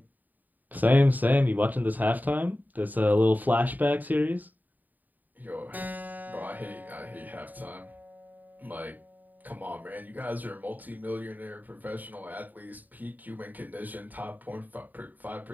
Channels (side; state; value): left; late; 0.085 ms